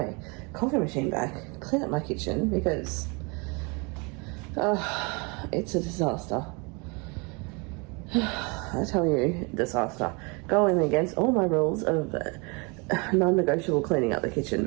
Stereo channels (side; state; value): left; quieter; 30.6 dB